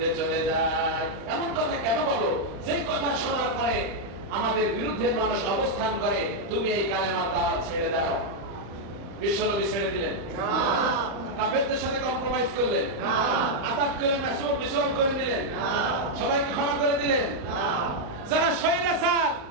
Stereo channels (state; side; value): late; left; 35 ms